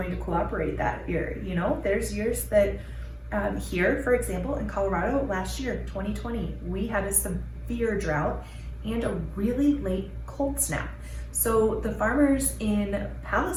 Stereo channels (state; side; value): identical; both; correlation 1.00